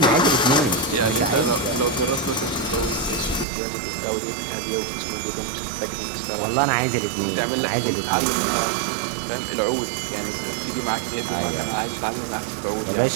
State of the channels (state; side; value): drops out; left; at 3.5 s